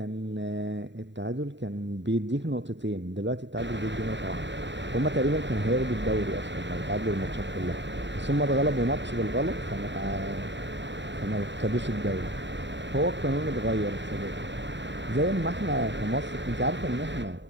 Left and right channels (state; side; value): late; left; 0.52 ms